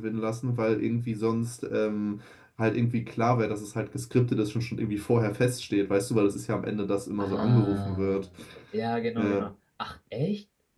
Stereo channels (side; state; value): both; identical; correlation 1.00